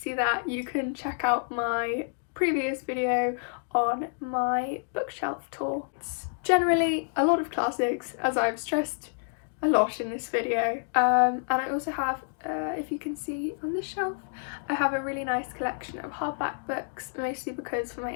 that, you can check out my previous video on my bookshelf tour. It's generally a lot of classics, as I've stressed a lot in this video, and I also have, if you can see on this shelf, I have a really nice collection of hardback books, mostly because for my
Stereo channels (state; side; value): silent; right; digital silence